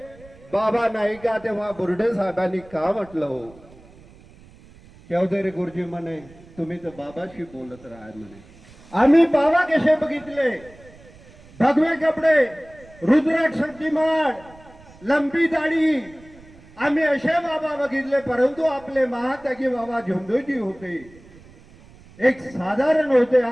बाबा नाही का. तेव्हा बुर्डे साहेबांनी का म्हटलं हो. चौधरी गुरुजी म्हणे तुम्ही तर बाबाशी बोलत राहा म्हणे. आम्ही बाबा कसे बघितले, भगवे कपडे, रुद्राक्ष शक्तिमान, लंबी दाढी, आम्ही असे बाबा बघितले. परंतु आपले महात्यागी बाबा झुमदेवजी होते, एक साधारण होते.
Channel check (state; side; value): noise; right; rumble, 23 dB below the sound